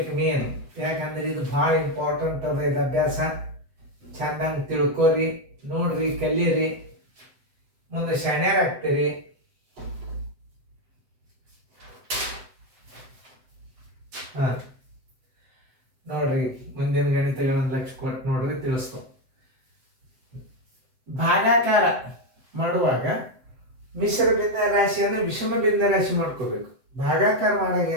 ಮೇನ್. ಯಾಕಂದ್ರೆ ಇದು ಭಾಳ ಇಂಪಾರ್ಟೆಂಟ್ ಅದ. ಇದು ಅಭ್ಯಾಸ ಚಂದಂಗೆ ತಿಳ್ಕೊರಿ, ನೋಡ್ರಿ, ಕಲೀರಿ, ಮುಂದೆ ಶಾಣ್ಯರಾಗ್ತೀರಿ. ಹಾಂ, ನೋಡ್ರಿ, ಮುಂದಿನ ಗಣಿತಗಳನ್ನು ಲಕ್ಷ್ಯ ಕೊಟ್ಟು ನೋಡ್ರಿ, ತಿಳಿಸ್ತು. ಭಾಗಾಕಾರ ಮಾಡುವಾಗ ಮಿಶ್ರ ಭಿನ್ನ ರಾಶಿಯನ್ನು ವಿಷಮ ಭಿನ್ನ ರಾಶಿ ಮಾಡ್ಕೋಬೇಕು. ಭಾಗಾಕಾರ ಮಾಡಾಗ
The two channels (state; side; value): late; left; 7.8 ms